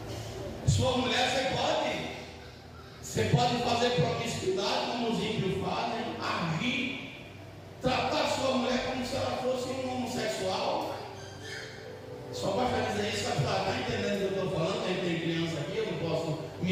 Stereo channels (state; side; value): identical; both; correlation 1.00